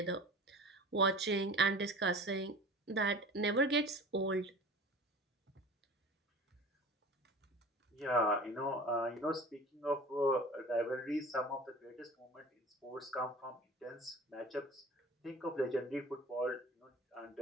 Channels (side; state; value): both; normal; correlation 0.40